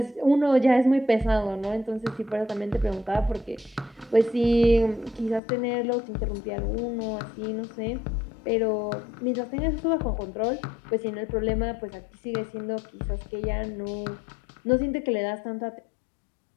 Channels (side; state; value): right; drops out; at 5.4 s